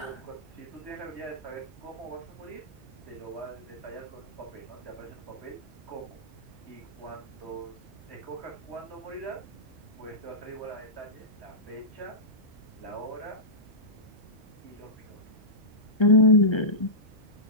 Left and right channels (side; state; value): both; normal; correlation -0.17